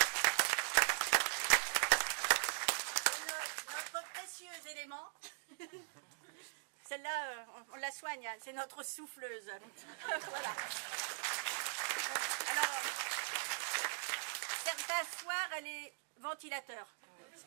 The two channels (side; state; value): left; silent; digital silence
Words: Notre précieux élément. Celle-là, on la soigne, hein, c'est notre souffleuse. Voilà. Alors, certains soirs, elle est ventilateur. Ce